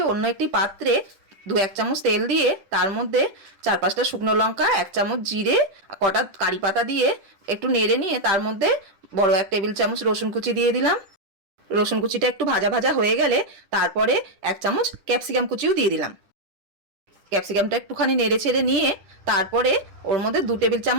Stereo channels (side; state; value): left; late; 10 ms